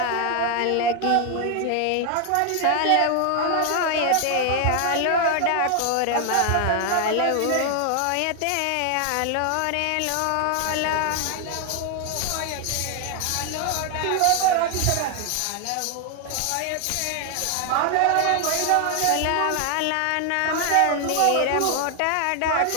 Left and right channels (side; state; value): both; different; correlation 0.00